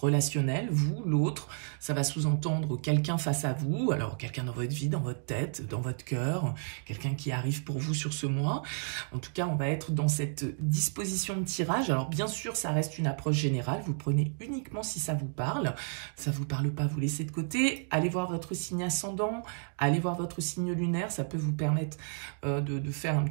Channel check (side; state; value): left; silent; 57 dB below the other